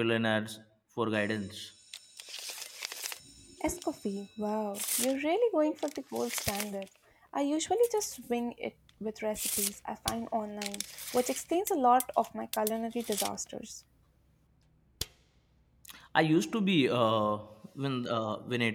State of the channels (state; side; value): identical; both; correlation 1.00